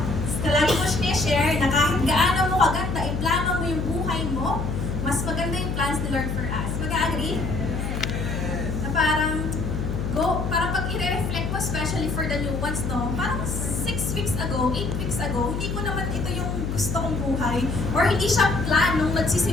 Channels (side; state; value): left; noise; hum, 3 dB below the sound